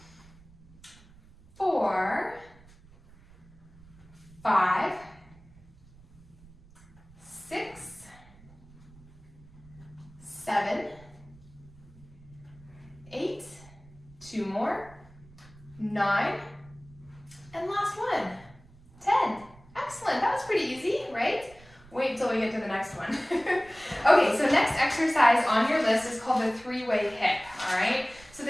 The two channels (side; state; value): right; noise; rumble, 24 dB below the sound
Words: 2 more, 9, and last one, 10. Excellent, that was pretty easy, right? Wait till we get to the next one. Okay, so next exercise on your list is called the 3-way hip, all right? So